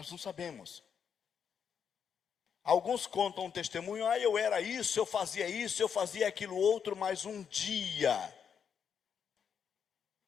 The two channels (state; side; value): quieter; right; 7.3 dB